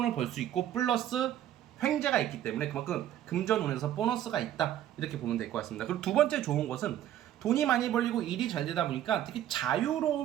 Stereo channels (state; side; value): quieter; left; 11.8 dB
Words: 벌 수 있고, 플러스 횡재가 있기 때문에 그만큼 금전운에서 보너스가 있다, 이렇게 보면 될 것 같습니다. 그리고 두 번째 좋은 것은 돈이 많이 벌리고 일이 잘 되다 보니까 되게